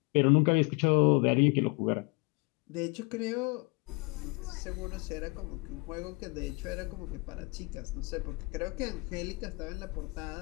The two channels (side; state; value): right; quieter; 28.3 dB